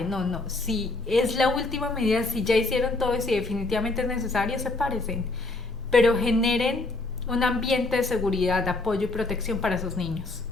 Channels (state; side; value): quieter; right; 3.2 dB